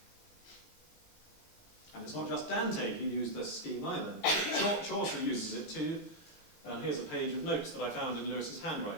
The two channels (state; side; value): late; right; 18 ms